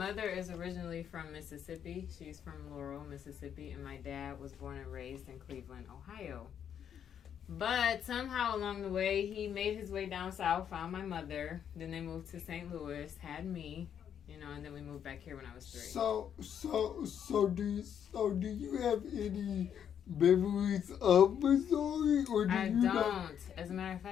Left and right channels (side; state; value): right; quieter; 8.7 dB